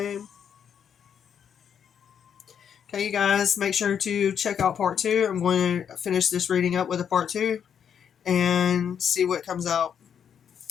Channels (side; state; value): right; quieter; 8.1 dB